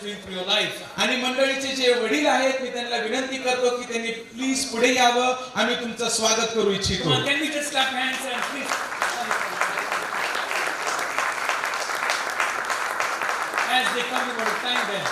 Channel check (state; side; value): identical; both; correlation 1.00